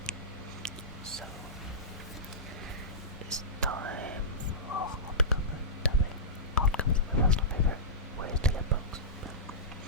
So it's time for hardcover tapping. Hardcover is my personal favourite ways to get books.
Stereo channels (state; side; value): normal; both; correlation -0.17